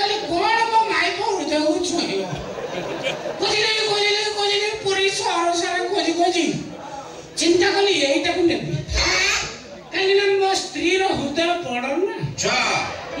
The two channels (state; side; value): identical; both; correlation 1.00